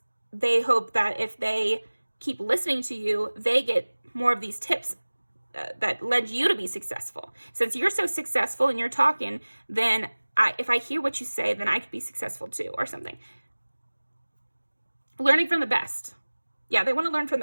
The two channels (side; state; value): both; inverted; correlation -1.00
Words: they hope that if they keep listening to you, they get more of these tips that led you to be successful. Since you're so successful and you're talking, then if I hear what you say, then I could be successful too, or something. Learning from the best. Yeah, they want to learn from